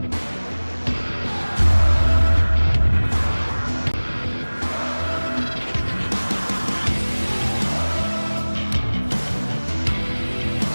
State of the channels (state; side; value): inverted; both; correlation -1.00